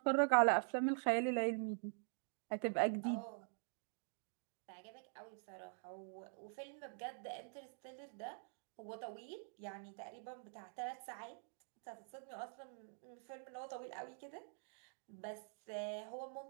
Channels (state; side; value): silent; left; digital silence